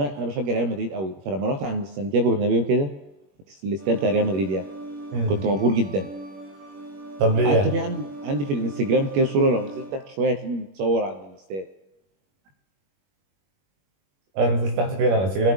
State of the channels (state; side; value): late; left; 21 ms